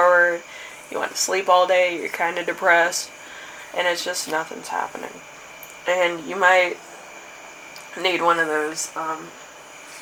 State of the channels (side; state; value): both; identical; correlation 1.00